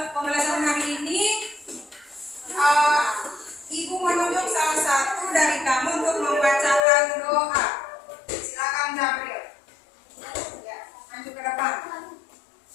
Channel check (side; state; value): right; drops out; at 6.9 s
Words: hari ini, Ibu menunjuk salah satu dari kamu untuk membacakan doa. Silakan Gabriel. Ya, maju ke depan.